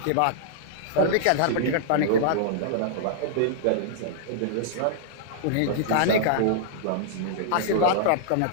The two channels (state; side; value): different; both; correlation -0.01